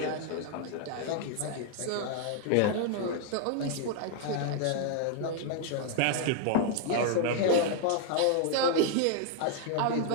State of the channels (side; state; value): both; different; correlation 0.00